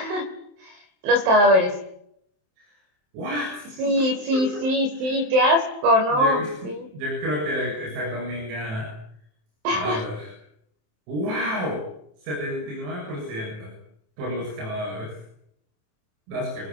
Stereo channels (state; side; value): late; left; 27 ms